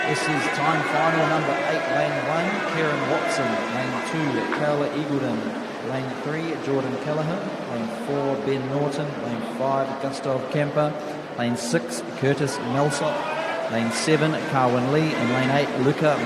This is time final number 8, lane 1, Kieran Watson. Lane 2, Carla Eagledon. Lane 3, Jordan Kelleher. Lane 4, Ben Norton. Lane 5, Gustav Kemper. Lane 6, Curtis Melsop. Lane 7, Carwin Lee. And lane 8, Luca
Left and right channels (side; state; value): both; identical; correlation 1.00